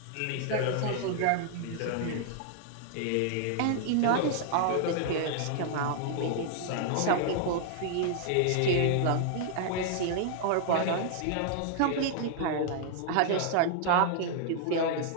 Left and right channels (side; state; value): both; different; correlation 0.00